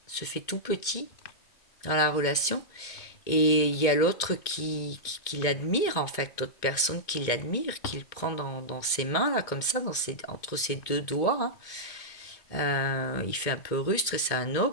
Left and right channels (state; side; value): late; right; 2.2 ms